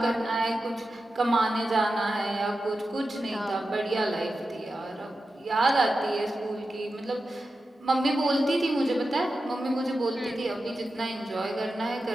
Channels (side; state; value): both; normal; correlation 0.91